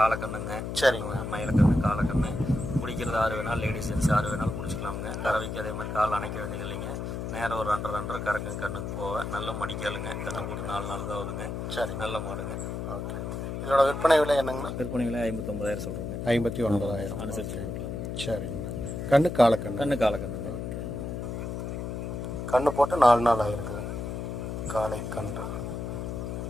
சரிங்க. மயிலக்கண்ணு காலக்கண்ணு. பிடிக்கிறது 6 வேணாலும் லேடிஸ் ஜென்ஸ் 6 வேணாலும் பிடிச்சிக்கலாமுங்க. கறவைக்கு அதே மாதிரி கால் அணைக்க வேண்டியது இல்லைங்க. நேரம் ஒரு 2.5 கறக்குங்க. கண்ணுக்கு போக நல்ல மடிக்காலுங்க. கண்ணு போட்டு 4 நாள் தான் ஆகுதுங்க. சரி, நல்ல மாடுங்க. ஓகே. இதோட விற்பனை விலை என்னங்கண்ணா? விற்பனை விலை 59,000 சொல்கிறோங்க. 59,000 அனுசரித்து கொடுக்கலாங்க. சரிங்கண்ணா. கண்ணு காலக்கண்ணு. கண்ணு காலக்கண்ணுங்க. ஓகே. கண்ணு போட்டு 4 நாள் ஆகிருக்குது. காலை கன்று.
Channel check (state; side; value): noise; left; hum, 4 dB below the sound